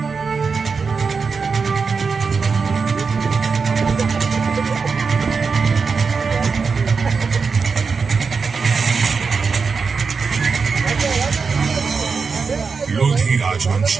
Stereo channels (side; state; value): left; quieter; 5.1 dB